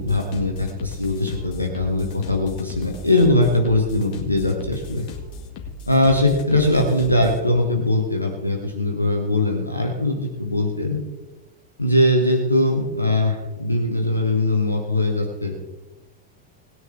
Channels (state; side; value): inverted; both; correlation -0.58